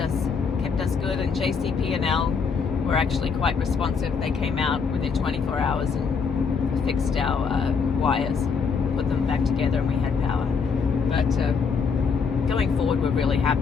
good, and JCP&L were actually quite responsive. They came out within 24 hours and fixed our wires, put them back together, and we had power. But going forward, we're really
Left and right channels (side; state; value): right; quieter; 5.6 dB